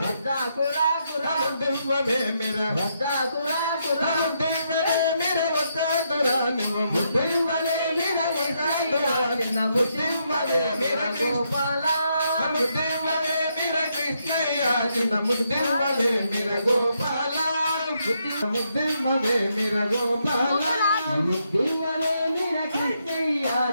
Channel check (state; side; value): inverted; both; correlation -0.78